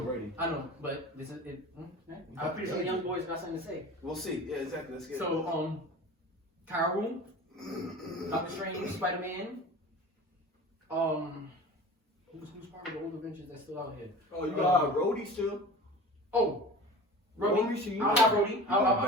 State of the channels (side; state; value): both; normal; correlation 0.37